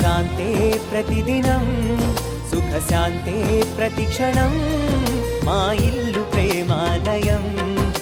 ప్రతిదినం, సుఖశాంతే ప్రతిక్షణం, మా ఇల్లు ప్రేమాలయం,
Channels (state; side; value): identical; both; correlation 1.00